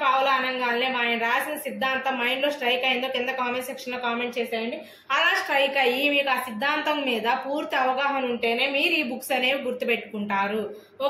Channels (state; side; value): identical; both; correlation 1.00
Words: పావ్లో అనగానే ఆయన రాసిన సిద్ధాంతం మైండ్ లో స్ట్రైక్ అయిందో కింద కామెంట్ సెక్షన్ లో కామెంట్ చేసేయండి. అలా స్ట్రైక్ అయ్యి మీకు ఆ సిద్ధాంతం మీద పూర్తి అవగాహన ఉంటేనే మీరు ఈ బుక్స్ అనేవి గుర్తుపెట్టుకుంటారు,